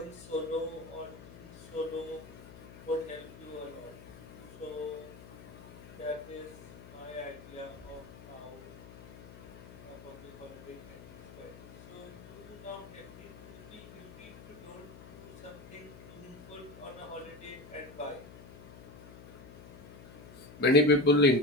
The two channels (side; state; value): left; noise; hum, 16 dB below the sound